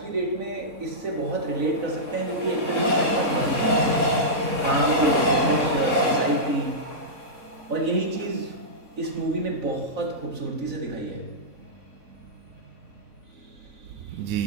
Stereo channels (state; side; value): late; left; 3.6 ms